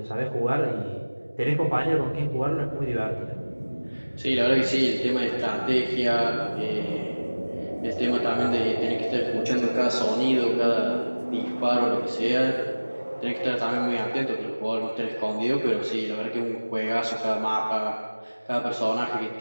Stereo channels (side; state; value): both; inverted; correlation -1.00